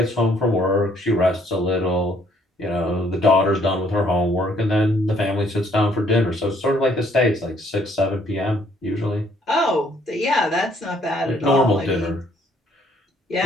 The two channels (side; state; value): both; normal; correlation 0.65